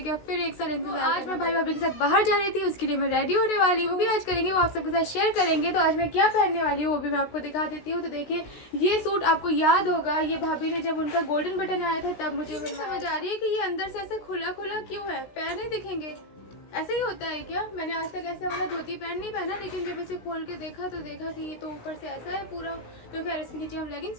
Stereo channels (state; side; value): late; right; 16 ms